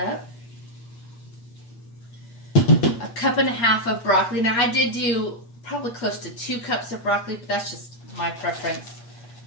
A cup and a half of broccoli. Now I did do probably close to 2 cups of broccoli, but that's just my preference.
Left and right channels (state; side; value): late; right; 8.5 ms